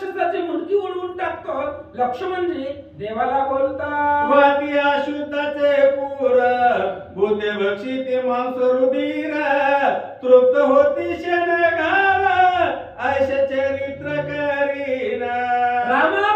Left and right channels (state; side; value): identical; both; correlation 1.00